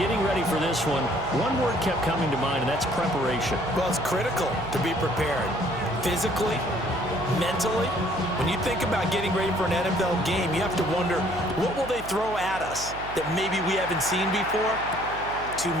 ready for this one word kept coming to mind, and that's preparation. Well, it's critical to be prepared. Physically, mentally. When you think about getting ready for an NFL game, you have to wonder, what will they throw at us that maybe we haven't seen before?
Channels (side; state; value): right; noise; hum, 13 dB below the sound